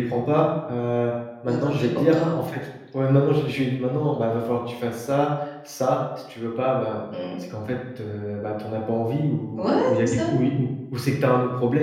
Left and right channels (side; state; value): both; identical; correlation 1.00